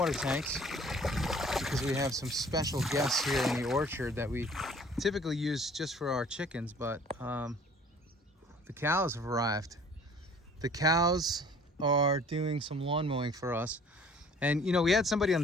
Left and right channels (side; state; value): both; normal; correlation 0.52